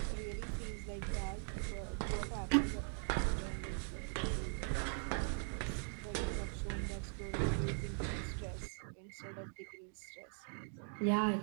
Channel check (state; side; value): silent; left; 50 dB below the other